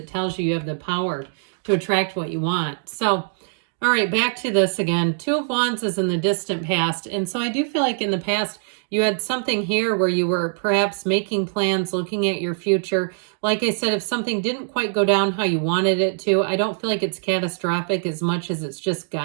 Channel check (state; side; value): silent; left; digital silence